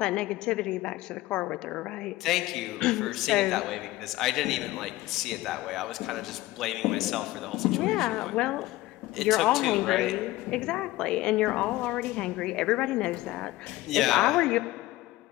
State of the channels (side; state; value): right; quieter; 17.7 dB